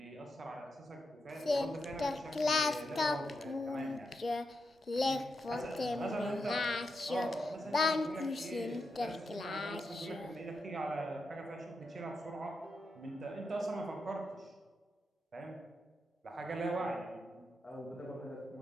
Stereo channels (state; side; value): normal; both; correlation 0.85